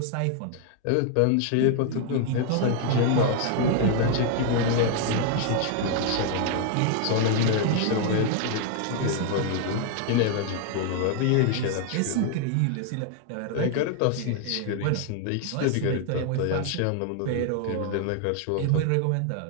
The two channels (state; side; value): different; both; correlation 0.00